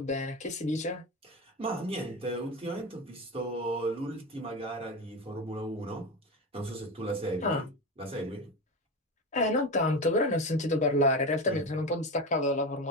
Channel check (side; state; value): both; normal; correlation 0.21